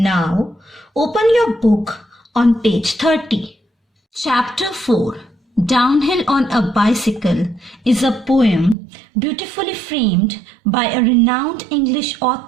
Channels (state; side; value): drops out; left; at 8.8 s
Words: open your book on page 30. Chapter 4 Downhill on a Bicycle is a poem beautifully framed by a renowned English